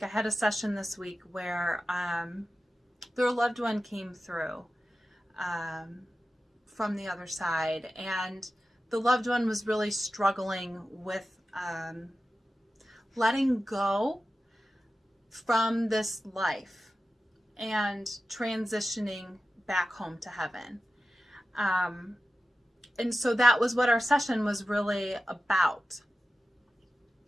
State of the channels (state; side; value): normal; both; correlation 0.94